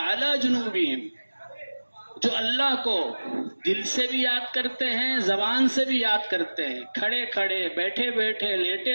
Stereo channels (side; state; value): both; inverted; correlation -1.00